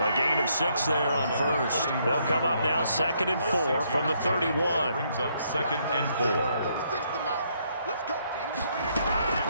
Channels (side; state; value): both; inverted; correlation -0.72